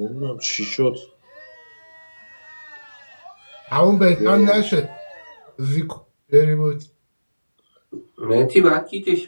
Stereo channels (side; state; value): both; inverted; correlation -1.00